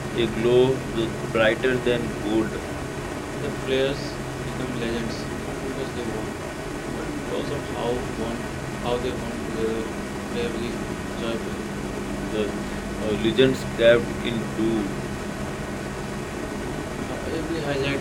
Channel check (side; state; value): both; identical; correlation 1.00